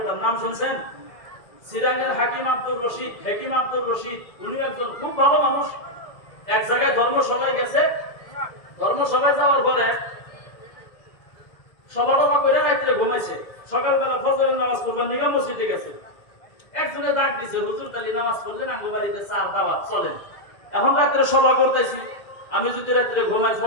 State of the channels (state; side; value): late; right; 2.4 ms